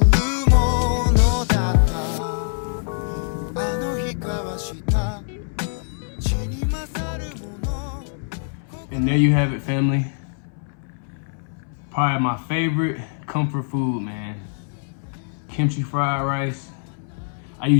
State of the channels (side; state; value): right; silent; 63 dB below the other